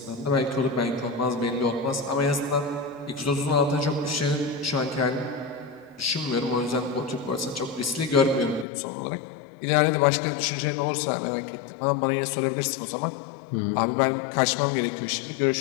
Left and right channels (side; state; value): right; drops out; at 8.7 s